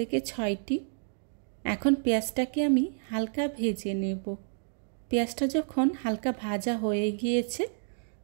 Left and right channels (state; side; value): silent; left; digital silence